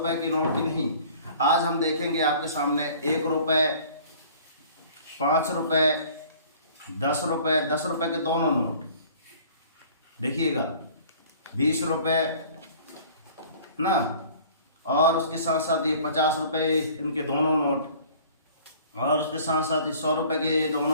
की नोट की नहीं, आज हम देखेंगे आपके सामने 1 रुपए, 5 रुपए, 10 रुपए, 10 रुपए के दोनों नोट देखिएगा, 20 रुपए ना, और उसके साथ साथ ये 50 रुपए इनके दोनों नोट, और उसके साथ साथ ही 100 रुपए के ये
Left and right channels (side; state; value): both; inverted; correlation -0.50